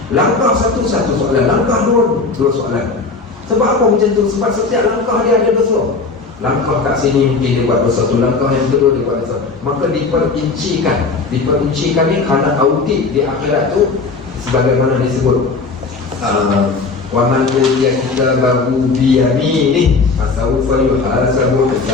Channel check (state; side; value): quieter; right; 4.2 dB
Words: Langkah satu soalan, langkah dua soalan. Sebab apa macam tu? Sebab setiap langkah dia ada dosa. Langkah kat sini mungkin dia buat dosa tu, langkah yang kedua dia buat dosa. Maka diperincikan ni kerana audit di akhirat tu, sebagaimana disebut wa man utiya kitabahu bi yaminihi fasawfa yuhasabu